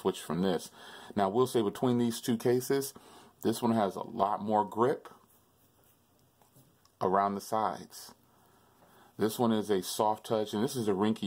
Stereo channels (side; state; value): both; identical; correlation 1.00